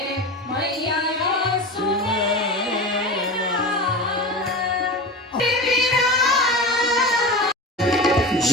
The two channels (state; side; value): normal; both; correlation 0.28